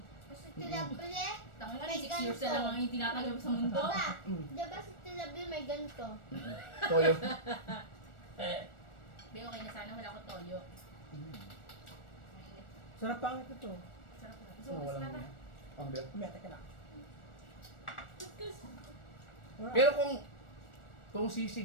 Kasi tilabli, Tanga ka, May 6 years na lang ang itinatagal mo sa mundo. ba? Diba si tilabli may ganito? Toyo. Be, okay na sana, wala akong toyo. Mainit. Sarap pangit na to. Sarap na. Ano, So, kasi walang na. ganyan. Ang biyak. Kumete ka na. Wala. Pero kung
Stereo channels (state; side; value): late; right; 1.4 ms